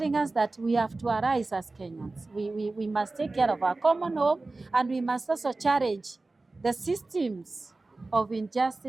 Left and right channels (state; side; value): quieter; left; 3.3 dB